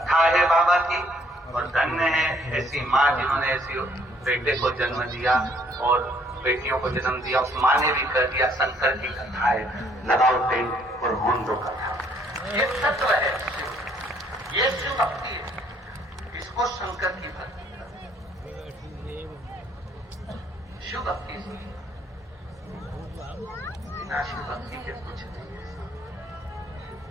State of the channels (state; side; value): normal; both; correlation 0.64